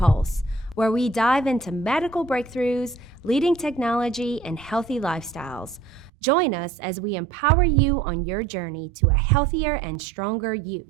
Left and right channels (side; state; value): left; drops out; at 6.1 s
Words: where we dive into medical breakthroughs, leading technology, and healthy lifestyles. Join us as we empower you on your journey to a healthier and stronger